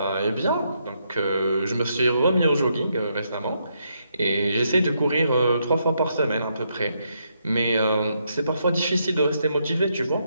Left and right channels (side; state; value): both; inverted; correlation -0.78